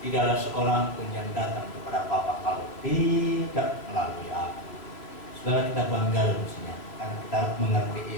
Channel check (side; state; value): right; late; 3.1 ms